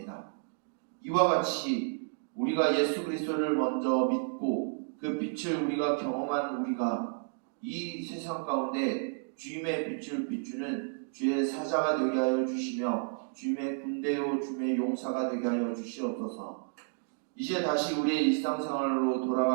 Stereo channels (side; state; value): left; silent; digital silence